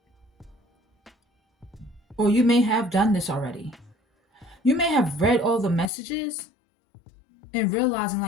Or you may have done this already. You may have read all the messages and realizing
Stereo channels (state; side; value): drops out; right; at 5.9 s